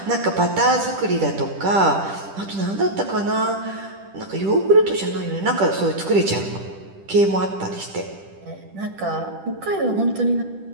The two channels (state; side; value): late; left; 10 ms